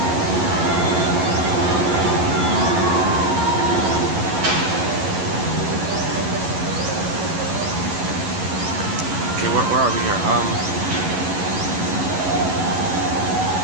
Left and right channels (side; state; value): left; late; 11 ms